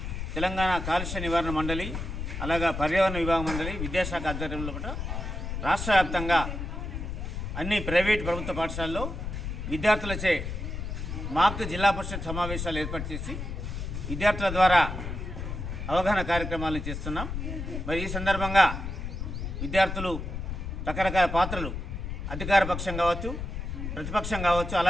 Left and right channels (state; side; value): noise; left; rumble, 5 dB below the sound